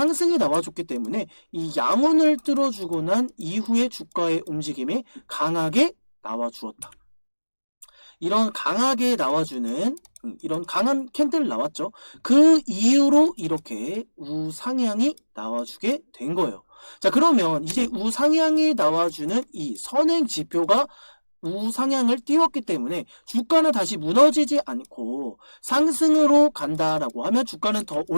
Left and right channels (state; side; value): inverted; both; correlation -1.00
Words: 나와줬기 때문에 이 양운을 뚫어주고 난 이후에 주가의 움직임이 강하게 나와주었다. 이런 강하게 나와주는 이런 강한 캔들 나왔죠. 그 이후로 이렇게 우상향이 나와주게 된 거예요. 자, 그러면 이제 우상향이 나와주는 이 선행 지표가 우상향을 띄웠기 때문에 주가는 다시 무너지지 않고 상승으로 간다라고 하면 주가는 더